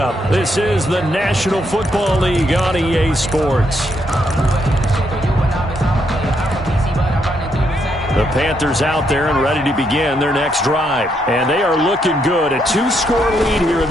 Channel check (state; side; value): normal; both; correlation 0.76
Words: This is the National Football League on EA Sports. The Panthers out there and ready to begin their next drive. And they are looking good. A 2-score lead here in